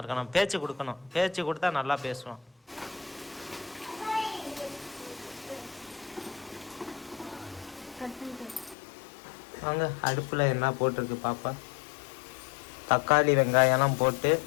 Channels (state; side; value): drops out; right; at 8.8 s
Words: இருக்கணும். பேச்சு கொடுக்கணும், பேச்சு கொடுத்தா நல்லா பேசுவான். வாங்க, அடுப்பில் என்ன போட்டிருக்கு பாப்பா? தக்காளி வெங்காயம்லாம் போட்டு